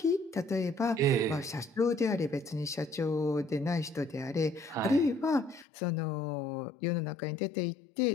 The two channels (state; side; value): drops out; right; at 5.7 s